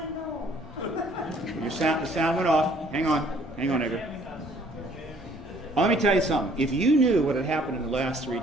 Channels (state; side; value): normal; both; correlation 0.59